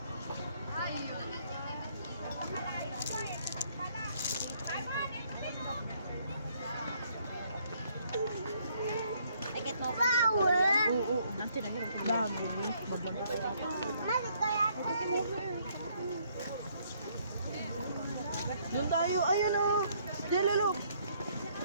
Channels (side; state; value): both; inverted; correlation -0.67